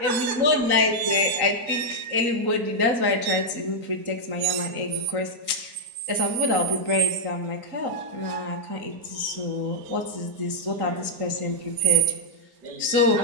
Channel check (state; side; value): late; left; 3.9 ms